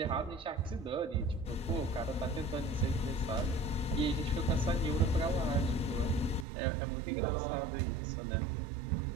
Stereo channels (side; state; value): left; drops out; at 6.5 s